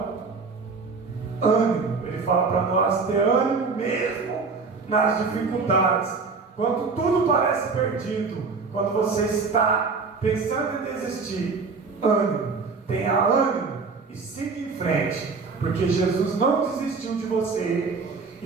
ânimo, ele fala para nós ter ânimo mesmo nas dificuldades, quando tudo parece perdido, quando você está pensando em desistir. Ânimo, tenha ânimo e siga em frente, porque Jesus não desistiu de você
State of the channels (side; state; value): left; quieter; 4.6 dB